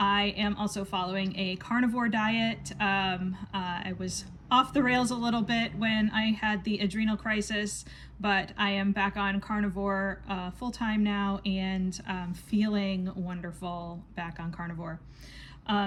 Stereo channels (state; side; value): identical; both; correlation 1.00